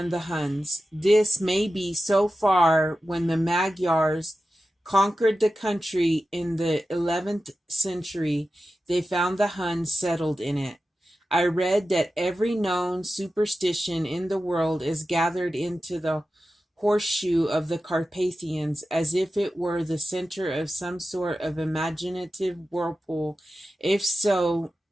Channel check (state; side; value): normal; both; correlation 0.93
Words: the Huns. This may be so far when the Magyars conquered the country in the 11th century. They found the Huns settled in it. I read that every known superstition in the world is gathered into the horseshoe of the Carpathians, as if it were the center of some sort of imaginative whirlpool. If so,